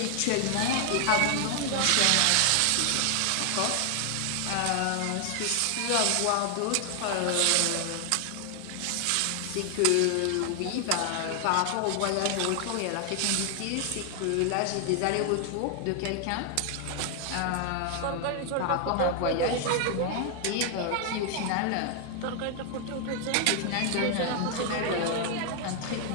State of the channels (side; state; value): both; different; correlation 0.00